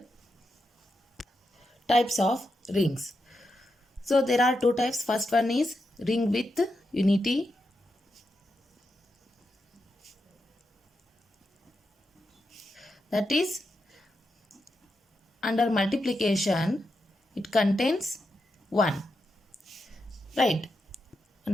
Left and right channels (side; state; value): both; normal; correlation 0.86